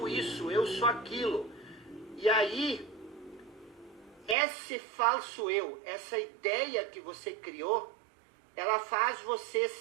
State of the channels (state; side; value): drops out; left; at 4.4 s